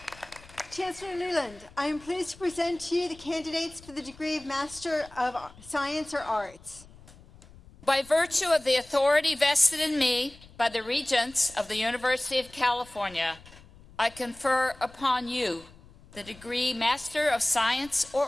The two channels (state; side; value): noise; left; rumble, 22 dB below the sound